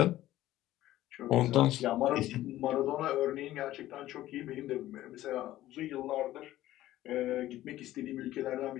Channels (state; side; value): quieter; right; 14.7 dB